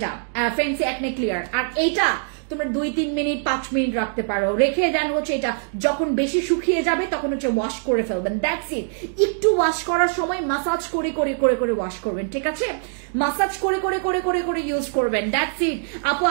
ফ্যান্সি অ্যাকনে ক্লিয়ার, আর এইটা তোমরা 2-3 মিনিট 5 মিনিট রাখতে পারো, রেখে দেন হচ্ছে এটা যখন বেশি শুকিয়ে যাবে তখন হচ্ছে ওয়াশ করে ফেলবেন, দ্যাটস ইট। একটু ওয়াশ করার সময় মাসাজ করে ওয়াশ করবেন, ঠিক আছে, মাসাজ করে ইউজ করবেন, দ্যাটস ইট। আপু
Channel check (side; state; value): left; silent; digital silence